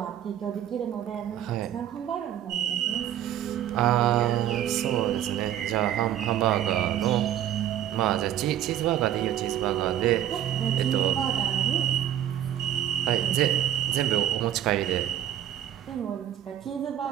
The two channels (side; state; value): left; quieter; 11.2 dB